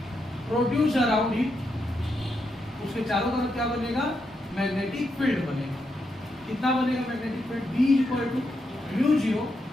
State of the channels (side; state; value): both; normal; correlation 0.83